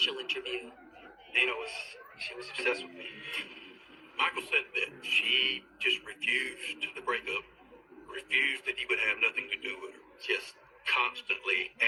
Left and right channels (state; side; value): identical; both; correlation 1.00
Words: interview. Dina was obsessed with me. Michael said that she just refused the breakup, refused that he would have nothing to do with her, just constantly